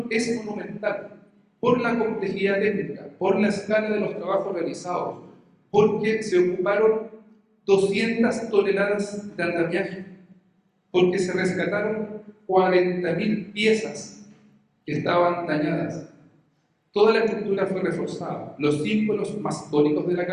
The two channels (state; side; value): identical; both; correlation 1.00